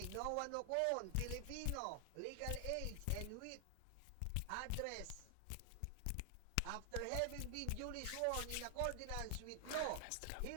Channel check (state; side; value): different; both; correlation 0.00